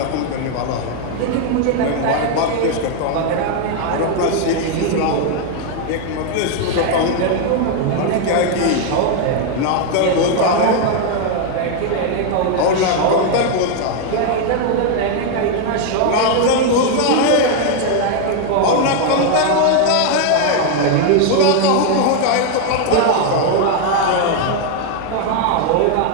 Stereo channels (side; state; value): both; different; correlation 0.00